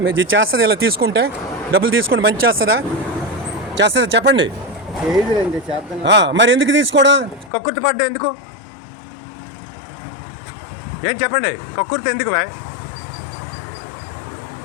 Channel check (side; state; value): right; drops out; at 7.5 s